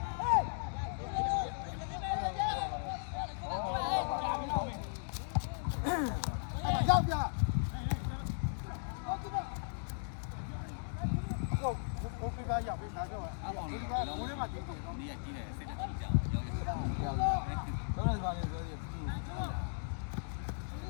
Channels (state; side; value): silent; right; digital silence